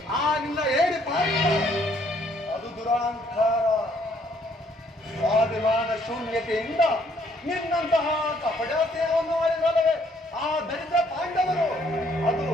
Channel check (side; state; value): both; normal; correlation 0.66